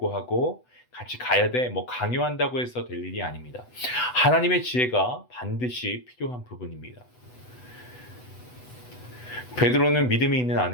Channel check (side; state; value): right; late; 8.0 ms